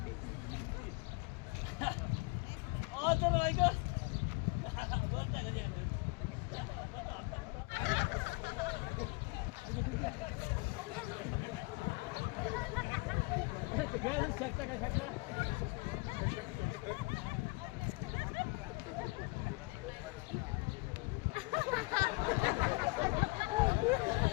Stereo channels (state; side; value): quieter; right; 26.4 dB